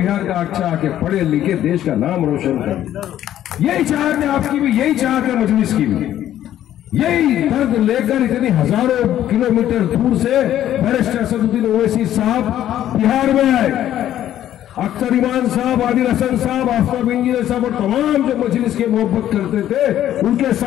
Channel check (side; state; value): right; quieter; 11.9 dB